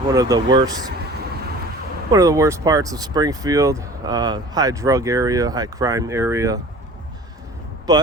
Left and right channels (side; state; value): both; normal; correlation 0.43